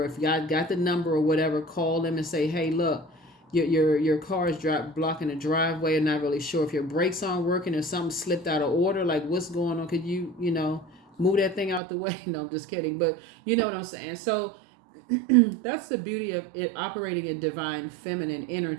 if God got the number or whatever, call them and say, hey, look, your car is blocking the driveway. I'm not really sure if your brakes aren't working, or something slipped out of order. Like, what's going on? Could you, move that thing out the way? No, I'm just kidding. But you know what I'm saying? So that's the beauty of it, operating in divine feminine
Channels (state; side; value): drops out; left; at 11.8 s